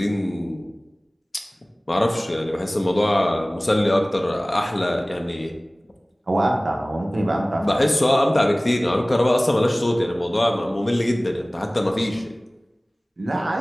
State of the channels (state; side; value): normal; both; correlation 0.98